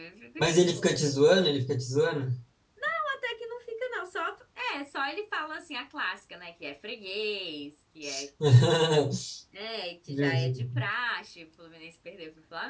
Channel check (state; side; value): identical; both; correlation 1.00